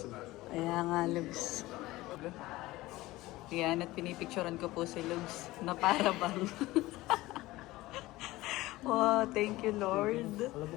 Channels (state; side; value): quieter; right; 18.4 dB